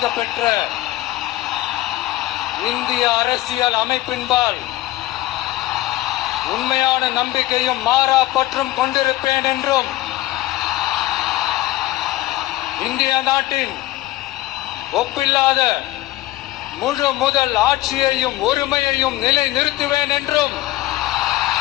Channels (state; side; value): quieter; right; 16.7 dB